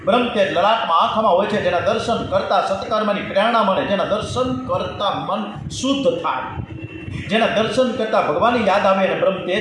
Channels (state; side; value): identical; both; correlation 1.00